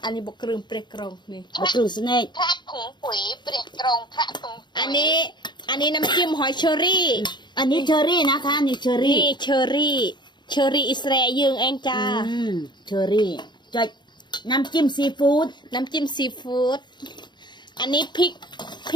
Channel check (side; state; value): right; late; 0.22 ms